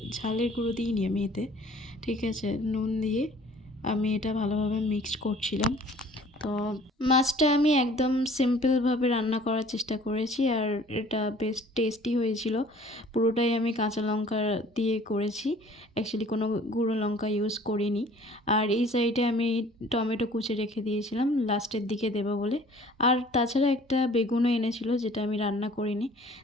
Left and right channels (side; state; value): both; normal; correlation 0.52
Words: ঝালের গুঁড়ো দিইনি আমি এতে, ঠিক আছে, নুন দিয়ে আমি এটা ভালোভাবে মিক্সড করছিলাম। তো মাছটা আমি একদম সিম্পলভাবে রান্না করার চেষ্টা করেছি, আর এটা বেশ টেস্টি হয়েছিল। পুরোটাই আমি কাঁচা লঙ্কা দিয়ে করেছি, অ্যাকচুয়ালি কোনো গুঁড়ো লঙ্কা ইউজ করিনি। আর এই সাইডে আমি টমেটো কুচি রেখে দিয়েছিলাম লাস্টের দিকে দেবো বলে। আর তাছাড়া একটা বেগুনও এনেছিল, যেটা আমি রান্না করিনি।